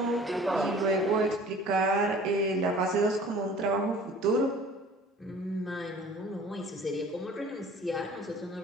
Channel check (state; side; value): normal; both; correlation 0.47